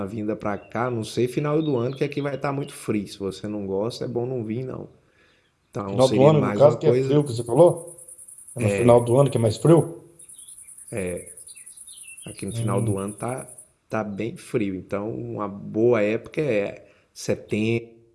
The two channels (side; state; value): both; identical; correlation 1.00